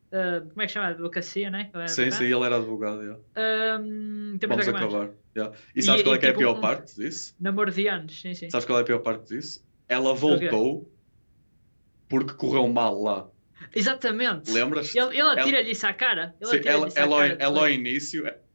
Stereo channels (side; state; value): both; inverted; correlation -1.00